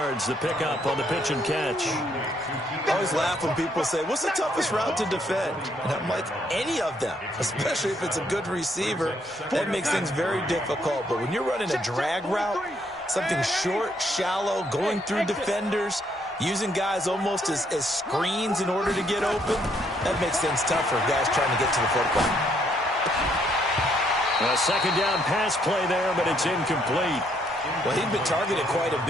the pickup on the pitch and catch. I always laugh when people say, what's the toughest route to defend? And I'm like, any of them, especially if it's a good receiver. That makes things very difficult. But when you're running a drag route, something short, shallow, going through defenders, using guys almost as screens in order to get open, that makes things tough for guys trying to get to the football. A second down pass play there, but it's incomplete. Well, he'd been targeted quite a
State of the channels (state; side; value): normal; both; correlation 0.71